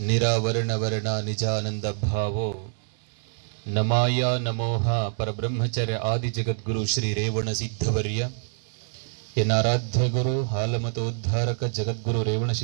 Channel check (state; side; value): silent; left; digital silence